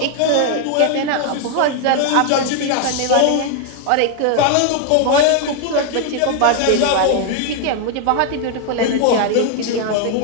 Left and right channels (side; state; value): both; different; correlation 0.00